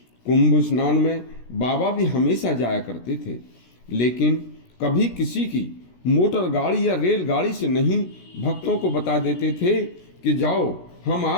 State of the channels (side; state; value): right; late; 16 ms